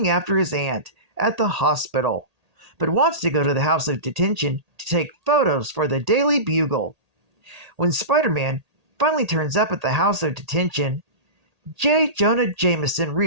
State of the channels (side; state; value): left; late; 1.8 ms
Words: after his aunt at the hospital, but wants to go to the House of Detention to take photos for the Daily Bugle. When Spider-Man finally turns up at the House of Detention, J. Jonah Jameson